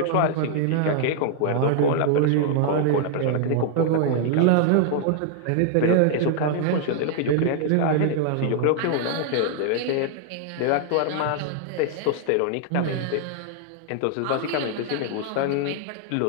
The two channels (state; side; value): different; both; correlation 0.00